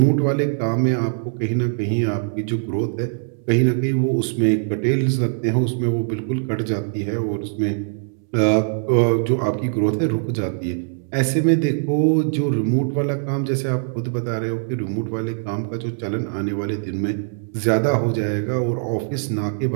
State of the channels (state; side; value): silent; left; digital silence